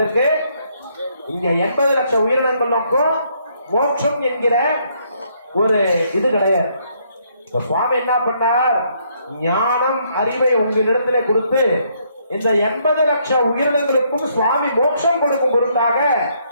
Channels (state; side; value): inverted; both; correlation -0.70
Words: இங்க 80 லட்சம் உயிரினங்களுக்கும் மோட்சம் என்கிற ஒரு இது கிடையாது. சுவாமி என்ன பண்ணார்? ஞானம் அறிவை உங்களிடத்துல கொடுத்து இந்த 80 லட்சம் உயிரினங்களுக்கும் சுவாமி மோட்சம் கொடுக்கும் பொருட்டாக